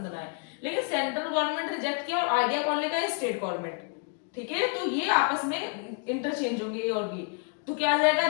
ना आए, लेकिन सेंट्रल गवर्नमेंट रिजेक्ट किया और आइडिया कौन लेगा, स्टेट गवर्नमेंट। ठीक है, तो ये आपस में इंटरचेंज होंगे ए और बी। तो क्या आ जाएगा,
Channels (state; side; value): quieter; right; 38.5 dB